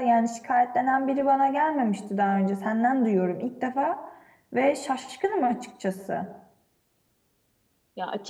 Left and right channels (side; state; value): both; identical; correlation 1.00